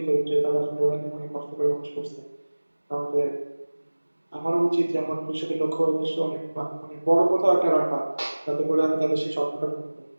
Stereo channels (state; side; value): inverted; both; correlation -1.00